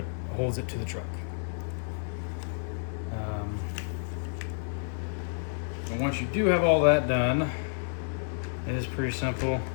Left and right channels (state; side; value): silent; right; digital silence